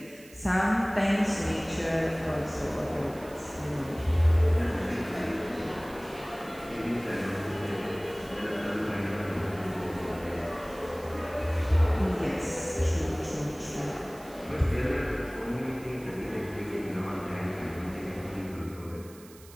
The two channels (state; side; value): noise; right; hiss, 22 dB below the sound